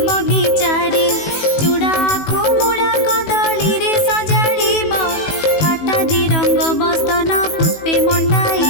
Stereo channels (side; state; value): right; late; 18 ms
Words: बगीचारे चूड़ा आखु मुड़ा कदली रे सजाड़ीब फाटा दी रंग बस्तन पुष्पे